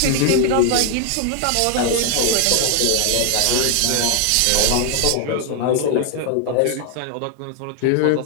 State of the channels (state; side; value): different; both; correlation 0.00